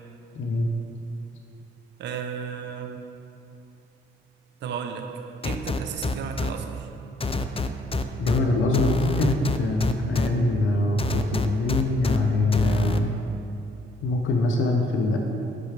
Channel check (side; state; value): both; normal; correlation 0.67